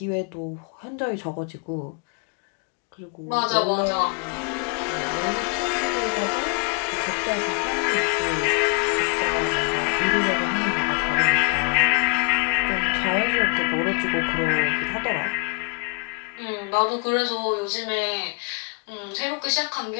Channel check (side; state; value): right; quieter; 35.1 dB